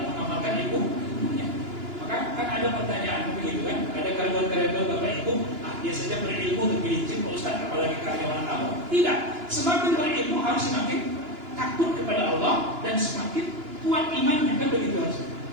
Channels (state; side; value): late; left; 2.9 ms